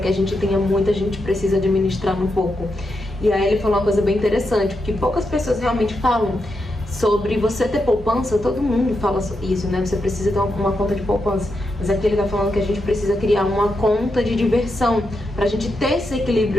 a gente tenha muito a gente precisa administrar no pouco. E aí ele falou uma coisa bem interessante, porque poucas pessoas realmente falam sobre você ter poupança. Todo mundo fala isso, né? Você precisa ter uma conta de poupança, mas aqui ele tá falando que a gente precisa criar uma conta de diversão pra gente ter esse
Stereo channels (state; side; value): normal; both; correlation 0.85